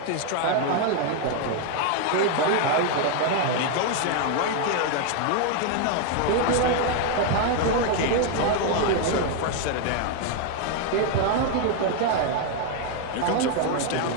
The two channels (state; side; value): different; both; correlation 0.01